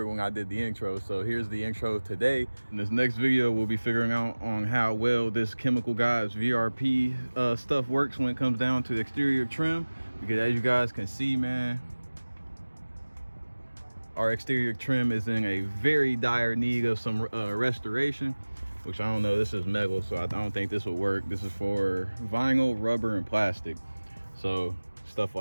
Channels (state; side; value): inverted; both; correlation -1.00